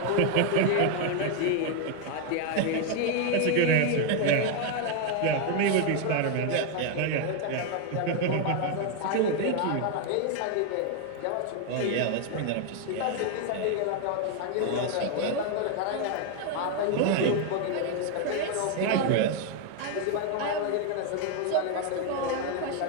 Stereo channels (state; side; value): different; both; correlation 0.01